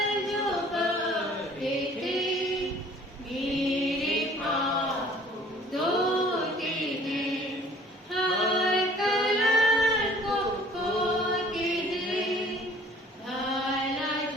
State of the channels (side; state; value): both; normal; correlation 0.53